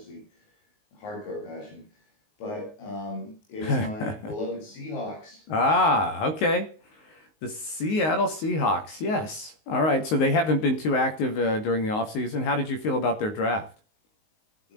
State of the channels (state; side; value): late; right; 19 ms